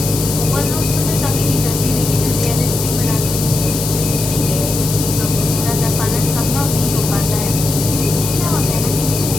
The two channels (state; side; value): noise; left; hiss, 5 dB below the sound